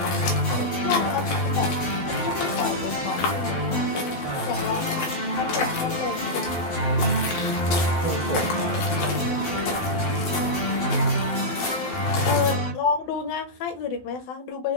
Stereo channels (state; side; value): late; right; 12 ms